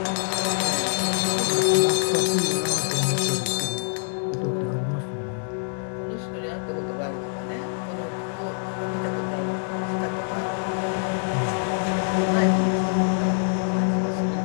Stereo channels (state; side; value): silent; right; 61 dB below the other